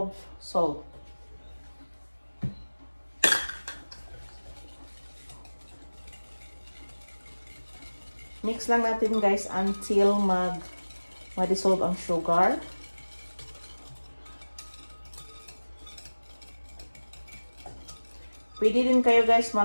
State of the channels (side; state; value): both; inverted; correlation -1.00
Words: salt. Mix lang natin guys until ma-dissolve ang sugar. Pwede din kayo guys